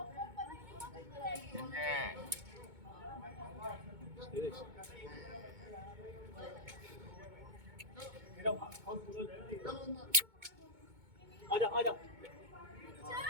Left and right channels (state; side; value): late; left; 2.2 ms